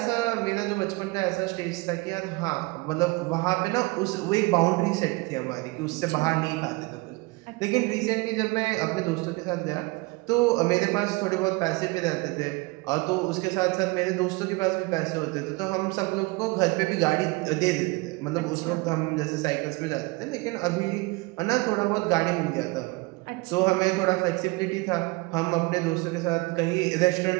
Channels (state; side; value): quieter; left; 24.8 dB